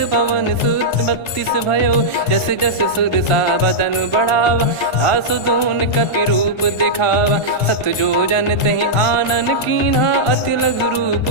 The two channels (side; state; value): right; late; 1.3 ms